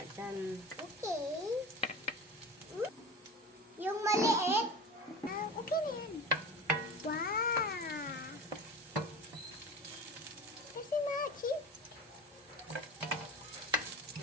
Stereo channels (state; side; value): normal; both; correlation 0.32